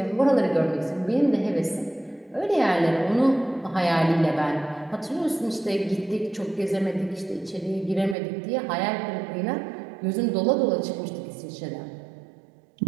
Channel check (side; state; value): left; drops out; at 8.2 s